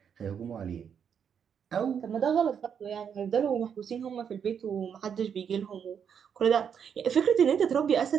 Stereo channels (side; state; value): left; quieter; 7.6 dB